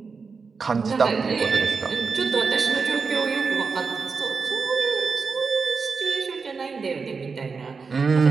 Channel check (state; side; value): quieter; left; 5.0 dB